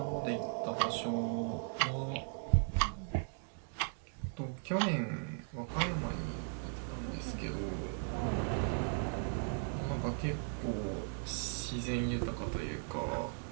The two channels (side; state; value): left; silent; 53 dB below the other